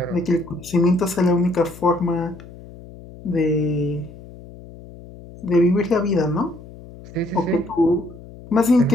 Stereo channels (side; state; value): left; noise; hum, 18 dB below the sound